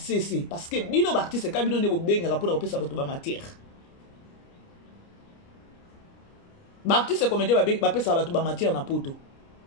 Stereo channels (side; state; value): right; late; 29 ms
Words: parce que bino artiste ka bino ne benga pour repesa bato ba matière. Ba artiste comédien ba pesa bato ba matière na poto.